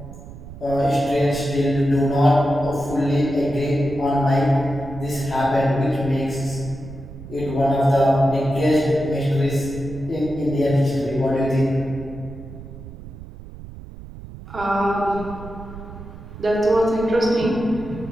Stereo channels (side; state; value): right; noise; rumble, 14 dB below the sound